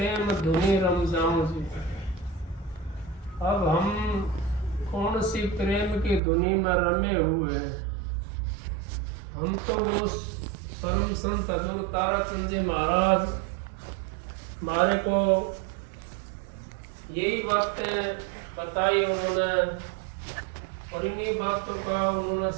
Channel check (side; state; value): left; drops out; at 6.2 s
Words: धुनी रम जाऊं जी। अब हम कौन सी प्रेम की धुनी में रमे हुए हैं। हम तो वो परम संत हजूर ताराचंद जी महाराज हमारे को यही बातें बताई उन्होंने, और इन्हीं बातों का उन्होंने